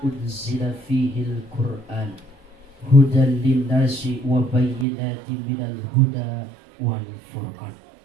unzila fihil Qur'an hudan lin-nasi wa bayyinatin minal huda wal furqan.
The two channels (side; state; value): left; drops out; at 4.9 s